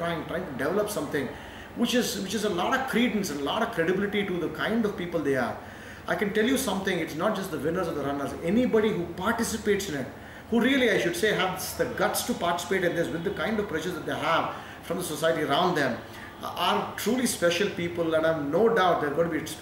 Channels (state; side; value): identical; both; correlation 1.00